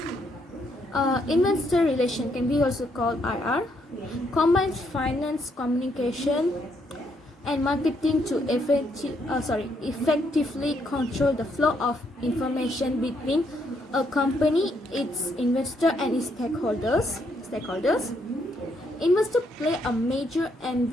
Investor relation can be also called IR, combines finance, communication, and marketing to effectively control the flow of information between a company, its investor, and its stakeholders. Investors play a major and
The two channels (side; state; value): both; normal; correlation 0.74